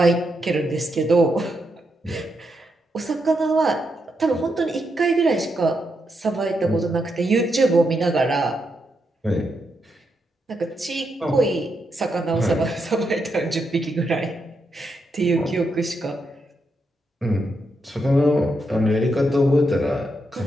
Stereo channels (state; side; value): normal; both; correlation 0.82